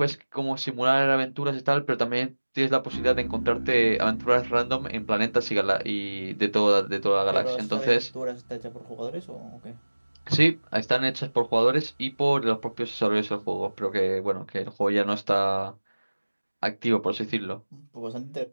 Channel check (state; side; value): inverted; both; correlation -1.00